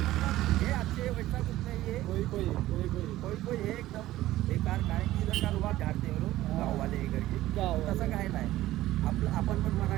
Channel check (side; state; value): left; quieter; 15.5 dB